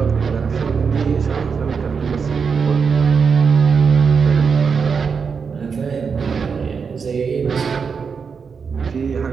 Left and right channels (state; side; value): quieter; left; 5.8 dB